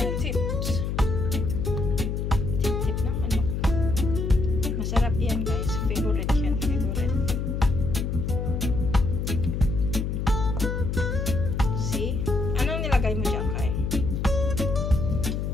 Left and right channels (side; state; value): left; noise; hum, 1 dB below the sound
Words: tips. Tip ng manok. Masarap yan guys. Favorite yan. Favorite. See? Anong nilagay mo dyan, Kai?